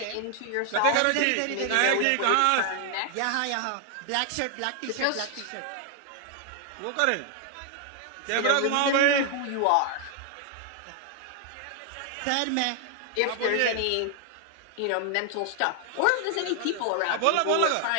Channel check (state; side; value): different; both; correlation 0.00